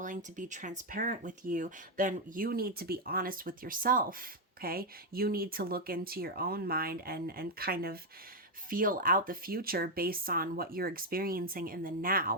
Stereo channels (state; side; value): normal; both; correlation 0.02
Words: to be transparent with you, then you need to be honest with yourself. Okay, you need to look into your own mind and kind of feel out the future based on what you're experiencing in the